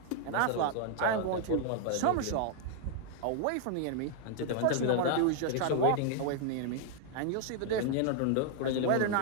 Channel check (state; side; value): different; both; correlation 0.00